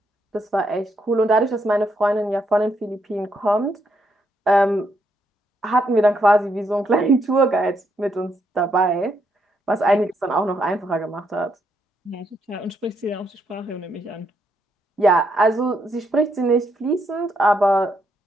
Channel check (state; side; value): normal; both; correlation 0.77